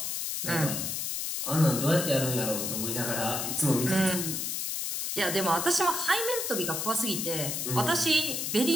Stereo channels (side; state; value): left; noise; hiss, 2 dB below the sound